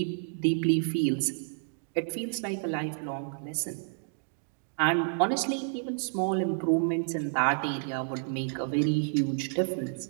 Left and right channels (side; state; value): left; silent; digital silence